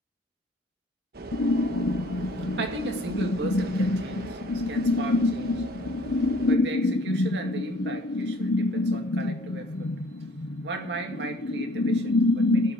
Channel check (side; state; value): both; normal; correlation 0.56